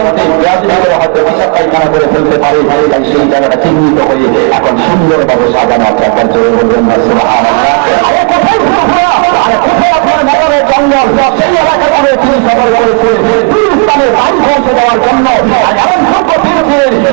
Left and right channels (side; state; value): left; quieter; 35.3 dB